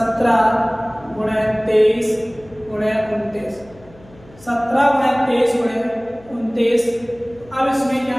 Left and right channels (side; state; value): left; noise; hum, 25 dB below the sound